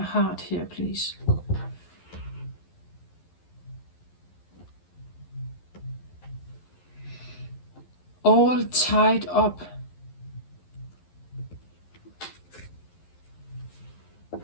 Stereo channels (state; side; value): late; right; 11 ms